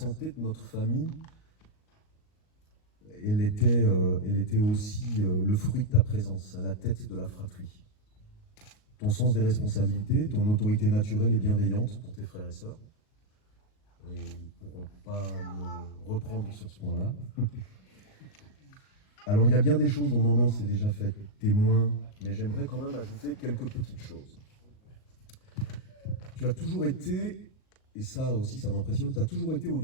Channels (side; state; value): right; late; 38 ms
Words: de notre famille, elle était aussi le fruit de ta présence à la tête de la fratrie. ton sens des responsabilités, ton autorité naturelle et bienveillante pour tes frères et sœurs. Et ils ne pourront pas me reprendre sur ce point-là. Alors, il y a bien des choses dont maman s'est déjà fait témoin, mais j'aimerais quand même ajouter quelques petites choses. Tu as toujours été, et ça aussi ça m'impressionne, tu as toujours été